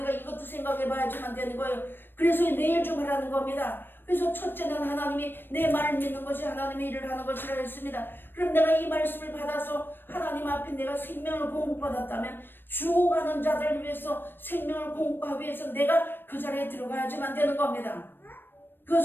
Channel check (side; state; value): right; late; 0.097 ms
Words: 이것도 생각해 봐야지만 되는 거예요. 그래서 내일 좀 하라는 겁니다. 그래서 첫째는 하나님이 내 말을 믿는 것이 하나님의 일을 하는 것이라 했습니다. 그럼 내가 이 말씀을 받아서 하나님 앞에 내가 생명을 공급받았다면 죽어가는 자들을 위해서 생명을 공급하기 위해서 내가 그 자리에 들어가야지만 되는 겁니다.